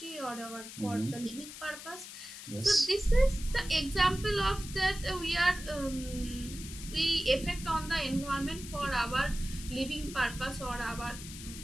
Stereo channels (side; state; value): left; noise; hiss, 12 dB below the sound